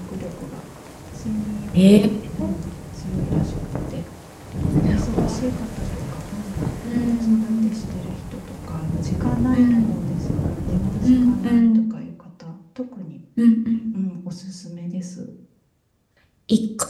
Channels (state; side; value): identical; both; correlation 1.00